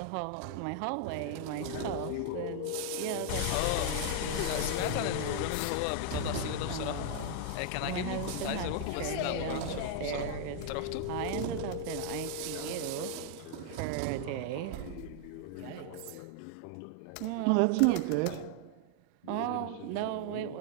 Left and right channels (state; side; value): different; both; correlation 0.00